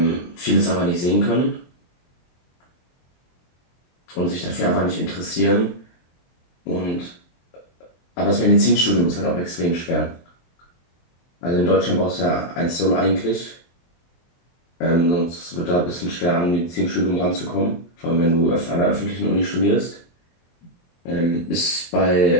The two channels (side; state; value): right; late; 23 ms